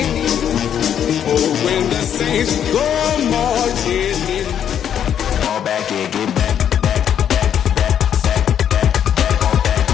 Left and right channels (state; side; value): quieter; right; 9.2 dB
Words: Oh, when the saints go marching in. Fall back and get back.